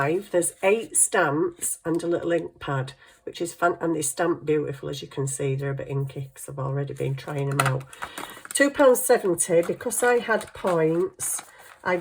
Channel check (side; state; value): both; identical; correlation 1.00